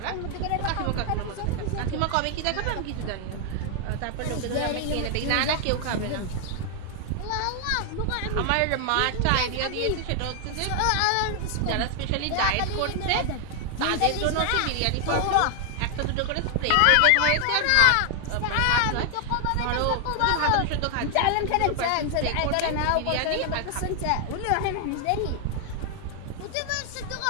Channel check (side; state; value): both; different; correlation 0.00